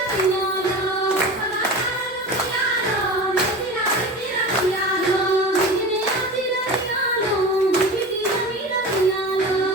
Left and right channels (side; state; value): both; normal; correlation 0.32